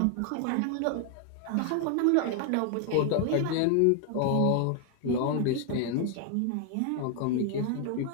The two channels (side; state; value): both; different; correlation 0.00